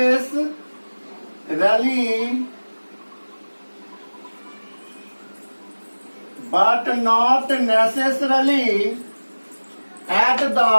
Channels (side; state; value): both; inverted; correlation -1.00